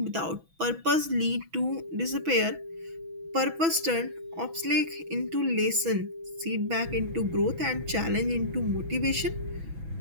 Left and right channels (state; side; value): late; left; 6.1 ms